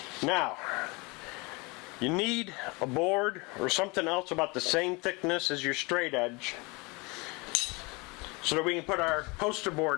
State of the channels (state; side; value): quieter; right; 27.0 dB